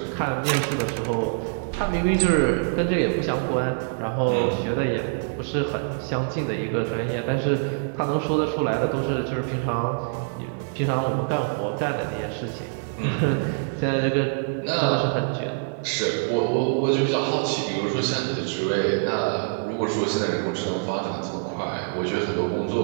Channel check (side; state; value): left; silent; digital silence